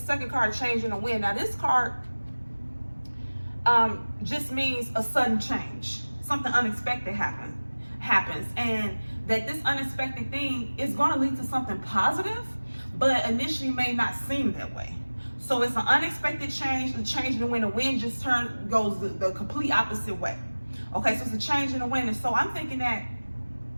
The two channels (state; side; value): inverted; both; correlation -1.00